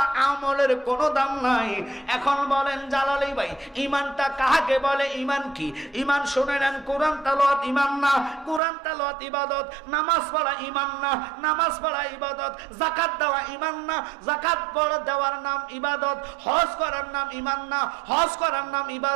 আমলের কোনো দাম নাই। এখন বলেন জালালি ভাই, ঈমানটা কাকে বলে? ঈমান কি? ঈমান শুনে নেন, কোরআন তেলাওয়াত ঈমান না, কোরআন তেলাওয়াত ইবাদত। নামাজ পড়া ঈমান না, নামাজ পড়া ইবাদত। যাকাত দেওয়া ঈমান না, যাকাত পড়া দেওয়ার নাম ইবাদত। হজ করার নাম ঈমান না, হজ করার নাম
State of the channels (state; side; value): drops out; left; at 8.6 s